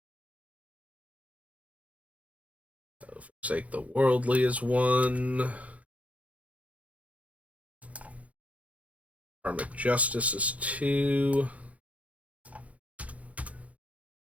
So, Forsake the Worldly is one. Karmic Justice is two.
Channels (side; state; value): left; late; 0.067 ms